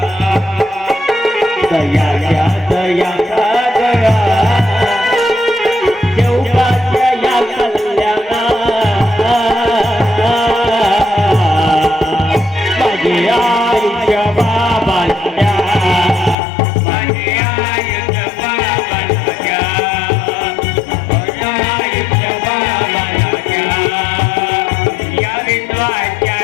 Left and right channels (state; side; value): drops out; right; at 16.4 s